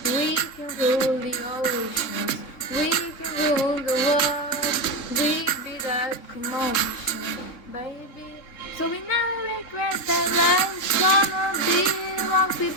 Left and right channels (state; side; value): late; right; 3.7 ms